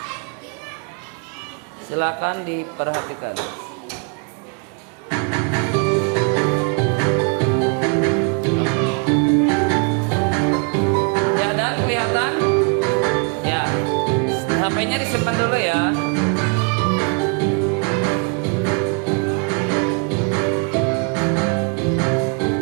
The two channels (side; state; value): left; quieter; 36.7 dB